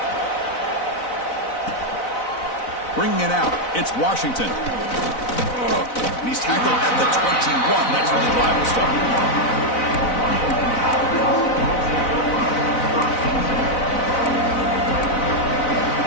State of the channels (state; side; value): late; right; 4.0 ms